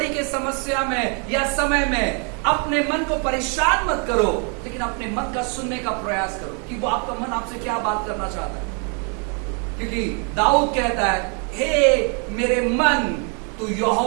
के समस्या में या समय में अपने मन को परेशान मत करो, लेकिन अपने मन का सुनने का प्रयास करो कि वो आपका मन आपसे क्या बात करना चाहता है। क्योंकि दाऊद कहता है, हे मेरे मन तू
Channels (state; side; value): quieter; left; 38.1 dB